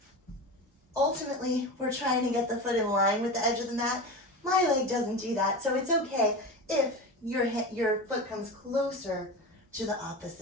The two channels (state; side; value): normal; both; correlation 0.26